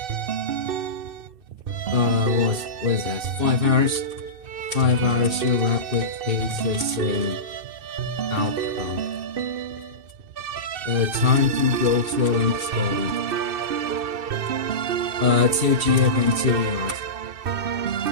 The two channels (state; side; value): late; left; 2.6 ms